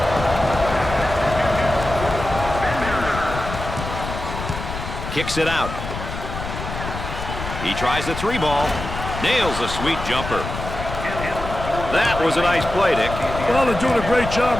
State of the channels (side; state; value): left; noise; rumble, 7 dB below the sound